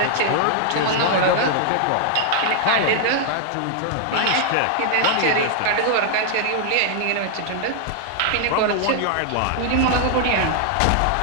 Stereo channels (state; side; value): different; both; correlation 0.00